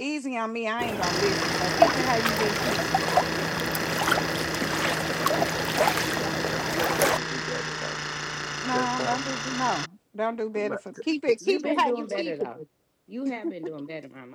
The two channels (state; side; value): identical; both; correlation 1.00